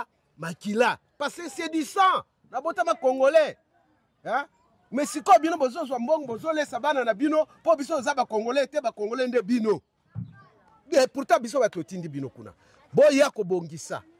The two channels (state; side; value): identical; both; correlation 1.00